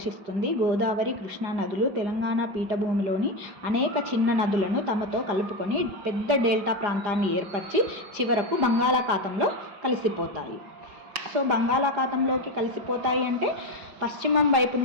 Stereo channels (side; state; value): left; late; 4.9 ms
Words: గోదావరి, కృష్ణా నదులు తెలంగాణ పీఠభూమిలోని అనేక చిన్న నదులను తమతో కలుపుకొని పెద్ద డెల్టా ప్రాంతాన్ని ఏర్పరిచి చివరకు బంగాళాఖాతంలో కలిసిపోతాయి. సో బంగాళాఖాతంలోకి కలిసిపోతాయి అంటే పశ్చిమం వైపు